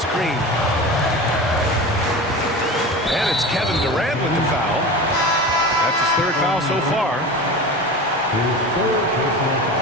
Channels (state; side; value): normal; both; correlation 0.31